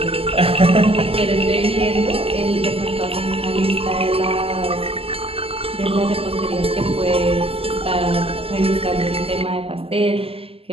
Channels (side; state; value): left; late; 0.28 ms